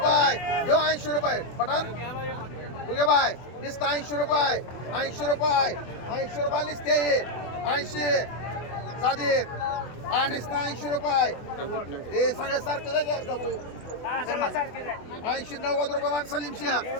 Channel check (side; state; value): right; late; 24 ms